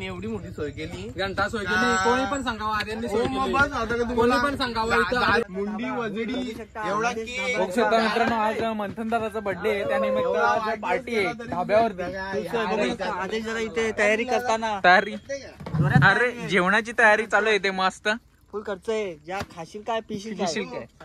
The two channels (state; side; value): identical; both; correlation 1.00